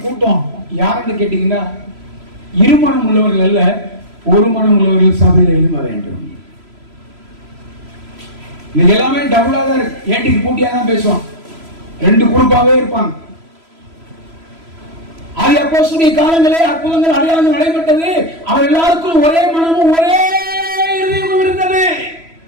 கூட்டம் யாருன்னு கேட்டீங்கன்னா, இருமனம் உள்ளவர்கள் அல்ல, ஒரு மனம் உள்ளவர்கள் சபையில எழும்ப வேண்டும். இன்னைக்கு எல்லாமே டபுளாக இருக்கு, ஏட்டிக்கு பூட்டியா தான் பேசுவான், ரெண்டு குரூப்பாவே இருப்பாங்க. ஆகிய அப்போஸ்தலருடைய காலங்களே அற்புதங்கள் அடையாளங்கள் நடைபெற்றது. அவர் எல்லாருக்கும் ஒரே மனமும் ஒரே இதயமும் இருந்தது.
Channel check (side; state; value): left; late; 3.0 ms